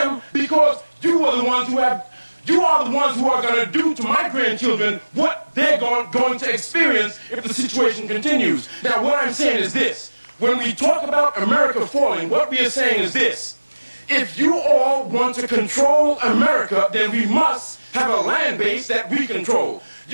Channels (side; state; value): both; inverted; correlation -1.00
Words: because you are the ones who have, you are the ones who are going to do to my grandchildren what they're going to experience if the situation continues. Now, what I'm saying is this. When we talk about America falling, what we are saying is this. If you all want to control America, then we must have a land base that we control.